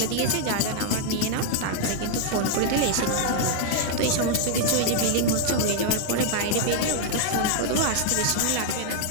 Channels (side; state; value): both; different; correlation 0.00